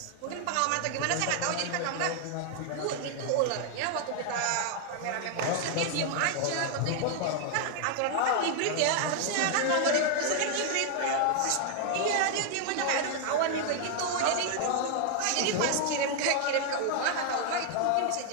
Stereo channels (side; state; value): both; different; correlation 0.00